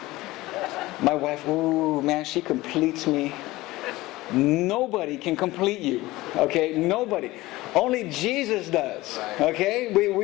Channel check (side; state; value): right; quieter; 18.8 dB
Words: My wife, ooh, man, she completes me. Nobody can complete you. Okay? Nobody. Only Jesus does. Okay?